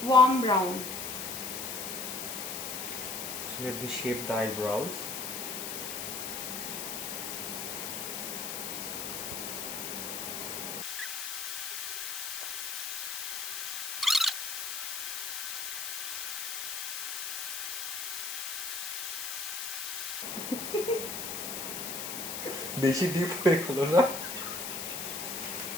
warm brown. so let me shape the eyebrows. বেশি deep হয়ে গেল না?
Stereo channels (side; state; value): left; noise; hiss, 4 dB below the sound